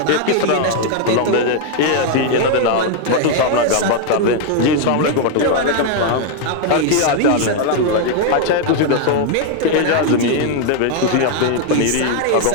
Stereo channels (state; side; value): different; both; correlation 0.00